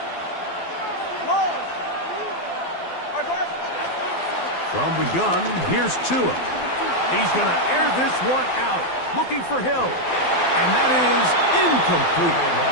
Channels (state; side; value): late; right; 12 ms